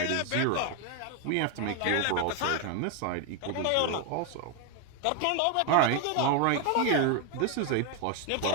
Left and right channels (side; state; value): both; different; correlation 0.01